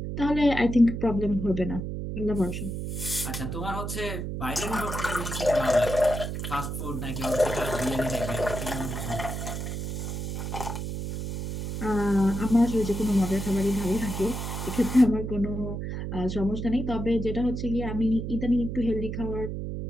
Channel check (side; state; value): right; noise; hum, 4 dB below the sound